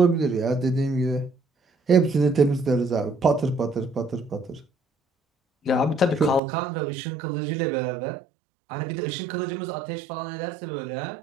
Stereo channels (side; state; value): left; drops out; at 6.4 s